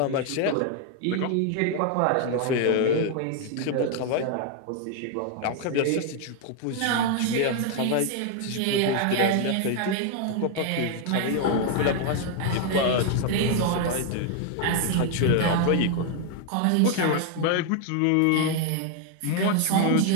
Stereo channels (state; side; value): different; both; correlation 0.00